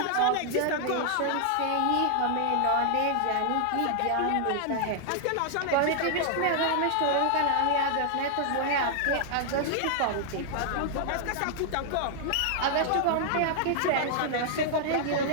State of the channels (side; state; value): both; different; correlation -0.01